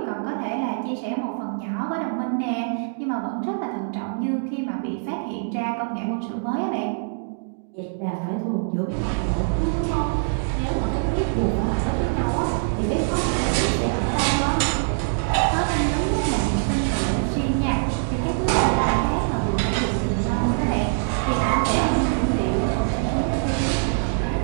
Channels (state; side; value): silent; left; digital silence